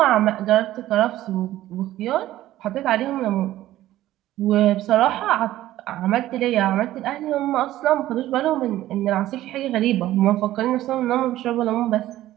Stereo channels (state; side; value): quieter; left; 14.5 dB